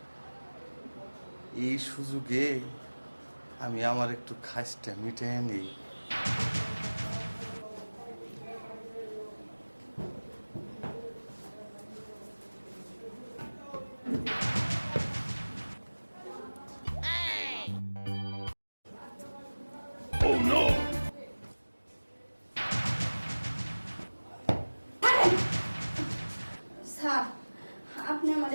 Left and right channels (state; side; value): inverted; both; correlation -1.00